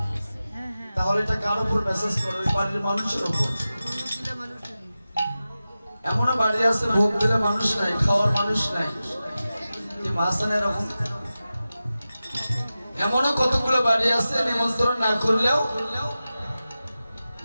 তাহলে এটা কার উপর মেসেজ করো? ওই বাড়ির মানুষের উপর। এমনও বাড়ি আছে ভোগ দিলে মানুষ নাই, খাওয়ার মানুষ নাই, এরকম। এমনও কতগুলো বাড়ি আছে নিমন্ত্রণ না করলেও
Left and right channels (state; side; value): inverted; both; correlation -0.94